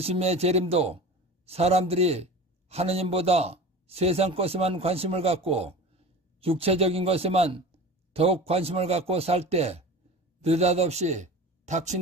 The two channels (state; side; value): normal; both; correlation 0.35